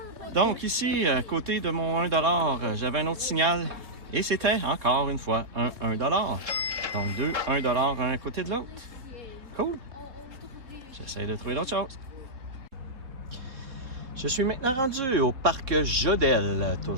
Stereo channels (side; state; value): left; late; 4.0 ms